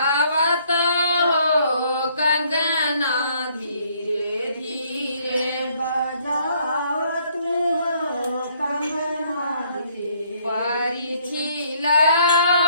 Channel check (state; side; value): inverted; both; correlation -0.65